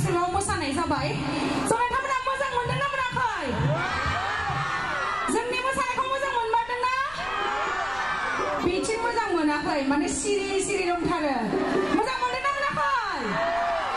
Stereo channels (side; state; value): left; noise; rumble, 18 dB below the sound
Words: मोसानाय जाबाय स' नोंथांमोना मोजां मोनदोंना मोनाखै जोंनि मोसानायखौ मोजां मोनमारदोंना बिथिं मोजां मोनाखै माने सिरि सिरि दंथारो मोजां मोनदोंना मोनाखै